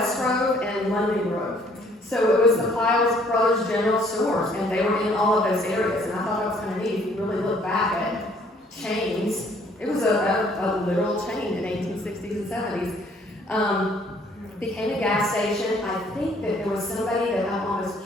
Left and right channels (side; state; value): both; normal; correlation 0.61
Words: Grove, and London Grove. So it was the Pyle Brothers General Stores, and they were in all of those areas. And I thought that was kind of neat. If you really look back at chains, it was a literal chain in 1860s and 70s. Became a gas station. I think that there was somebody that I'm almost